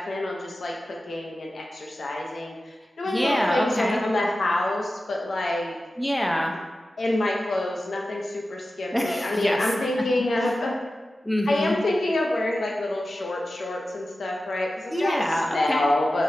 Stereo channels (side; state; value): both; normal; correlation 0.94